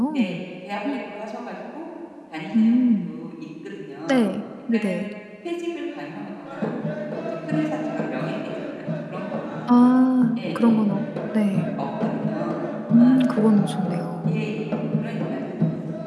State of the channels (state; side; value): identical; both; correlation 1.00